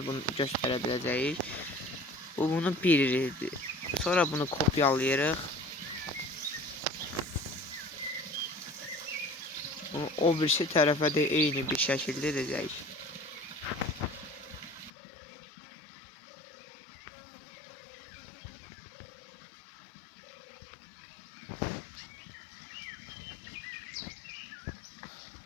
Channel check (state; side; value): drops out; right; at 14.9 s